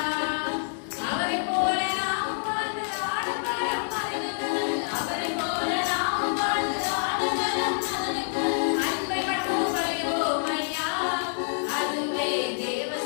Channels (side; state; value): right; silent; 60 dB below the other